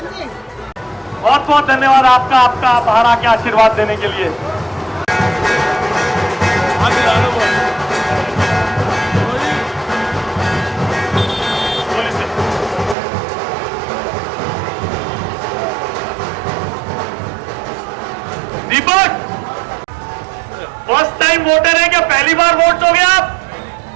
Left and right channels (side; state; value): left; drops out; at 13.0 s